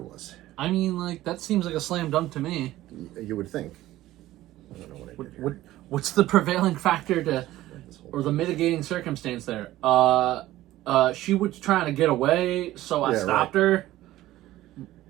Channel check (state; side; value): quieter; left; 15.5 dB